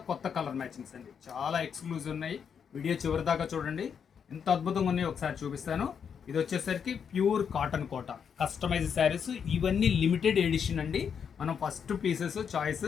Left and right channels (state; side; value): quieter; right; 7.2 dB